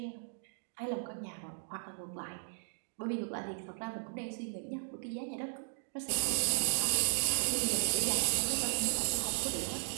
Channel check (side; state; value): left; silent; digital silence